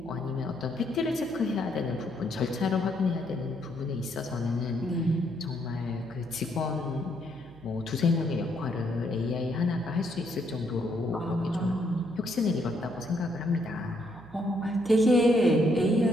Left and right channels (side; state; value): right; noise; hum, 21 dB below the sound